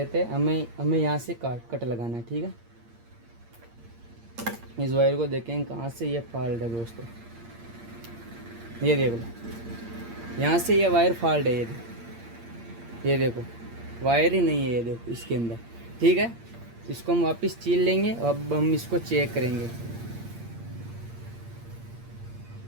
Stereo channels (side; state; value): left; late; 8.7 ms